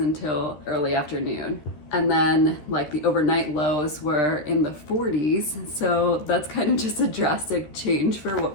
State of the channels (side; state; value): right; late; 13 ms